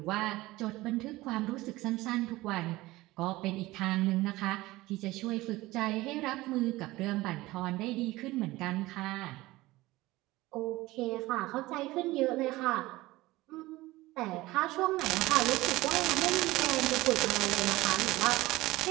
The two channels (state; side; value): quieter; left; 19.0 dB